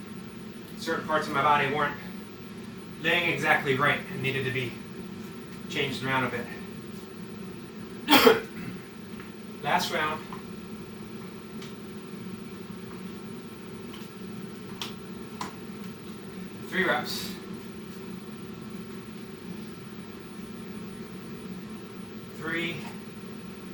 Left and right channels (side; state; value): both; identical; correlation 1.00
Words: certain parts of my body weren't laying exactly right and needed to be changed around a bit. Last round. Three reps. Three